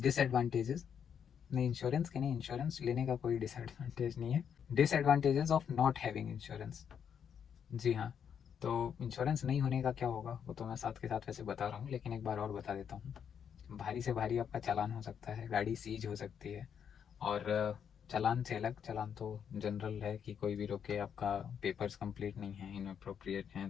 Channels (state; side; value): quieter; right; 7.9 dB